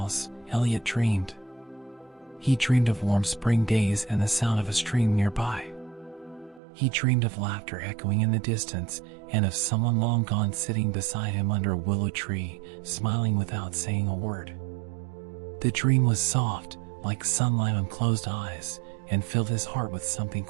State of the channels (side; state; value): left; drops out; at 6.6 s